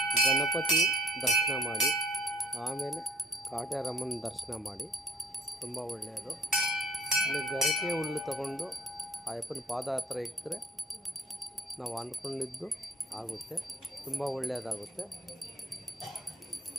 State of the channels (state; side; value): normal; both; correlation 0.58